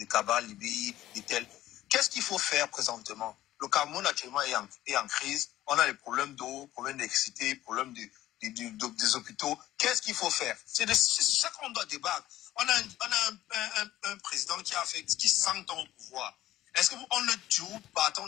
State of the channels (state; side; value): quieter; right; 14.4 dB